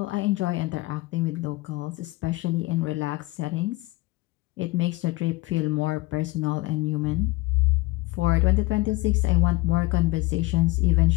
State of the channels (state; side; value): quieter; right; 20.9 dB